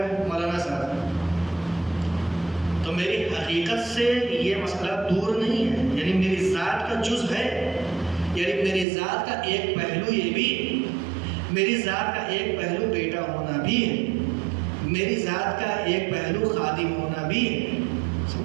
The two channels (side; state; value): left; drops out; at 8.8 s